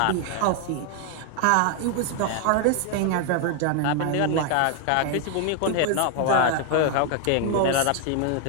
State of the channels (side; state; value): both; different; correlation 0.00